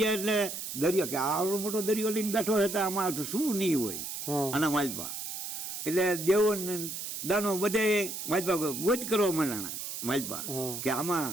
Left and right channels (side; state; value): right; noise; hiss, 6 dB below the sound